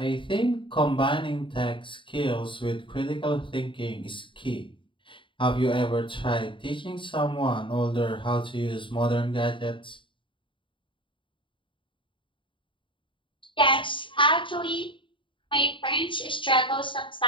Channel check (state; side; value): late; right; 0.24 ms